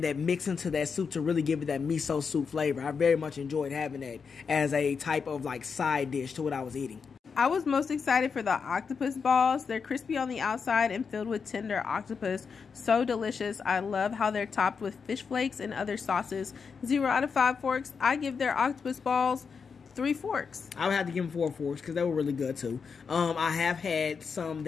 that mix into that soup to really give it that miso soup flavor. I very much enjoyed having that as a type of like side dish to what I was eating. I was most excited for the octopus balls. They're crispy on the outside and filled with tender octopus. So delicious. I love how they're topped with fish flakes and other sauces. 0 out of 5 forks. I give their octopus balls 3 forks. I would have to give them 4 forks because they were really good too. I have had some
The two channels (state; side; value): quieter; right; 5.7 dB